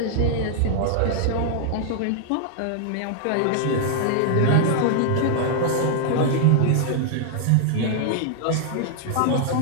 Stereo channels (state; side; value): different; both; correlation 0.00